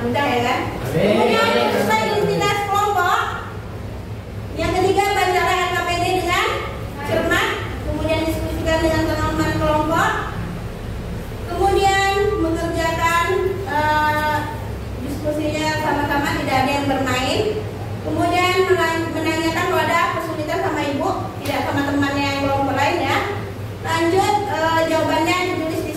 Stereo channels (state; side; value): identical; both; correlation 1.00